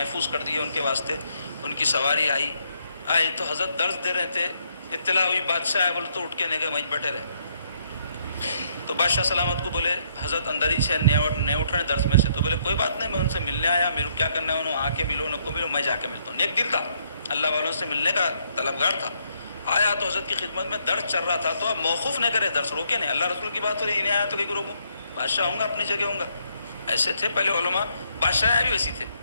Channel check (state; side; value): inverted; both; correlation -0.71